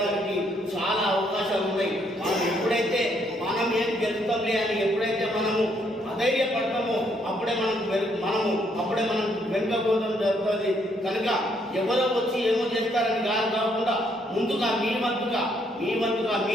చాలా అవకాశాలు ఉన్నాయి. మనం ఎప్పుడైతే మనం ఏం గెలుస్తాంలే అని ఎప్పుడైతే మనము అధైర్యపడతామో అప్పుడే మనం వెనుకపోవడం జరుగుతుంది. కనుక ఎవరో వచ్చి ఏమో చేస్తారని కాకుండా ముందుగా మీ వంతుగా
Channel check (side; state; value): both; normal; correlation 0.71